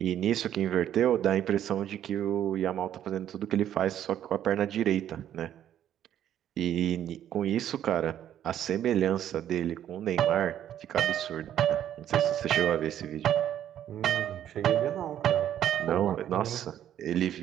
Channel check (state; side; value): quieter; left; 10.8 dB